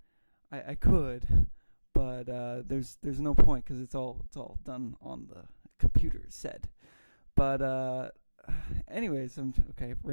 I could, but there's no point because it's all done on the computer said. But anyways, I'm okay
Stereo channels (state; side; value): inverted; both; correlation -1.00